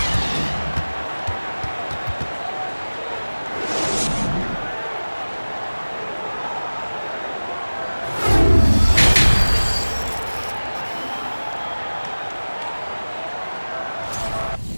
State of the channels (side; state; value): both; inverted; correlation -1.00